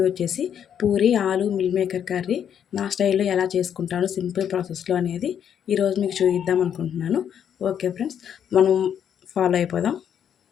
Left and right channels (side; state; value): right; quieter; 8.8 dB